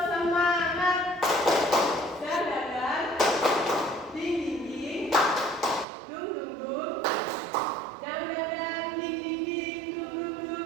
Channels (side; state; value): left; drops out; at 5.9 s